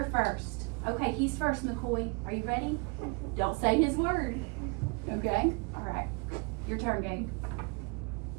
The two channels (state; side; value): quieter; left; 31.5 dB